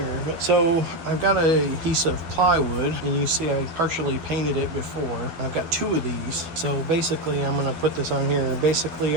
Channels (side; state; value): left; late; 12 ms